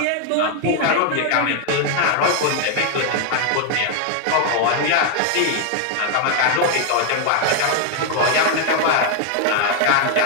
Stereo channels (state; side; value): different; both; correlation 0.00